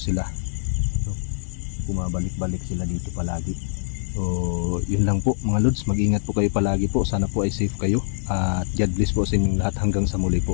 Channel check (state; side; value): silent; right; digital silence